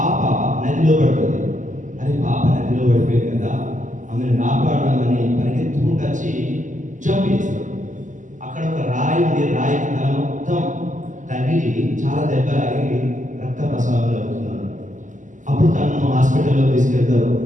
నదిలో పడుతుంది. అది పాప నదిలో పడిపోయింది కదా, ఆమెను కాపాడాలని పరిగెత్తుకుంటూ వచ్చి జంప్ చేస్తాడు. అక్కడ ఒక రాయి ఉంది, రాయికి తల మొత్తం తగిలి చాలా దెబ్బలాగి రక్త ప్రసవాలు అవుతున్నాడు. అప్పుడు తనను హాస్పిటల్లో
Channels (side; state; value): left; late; 0.37 ms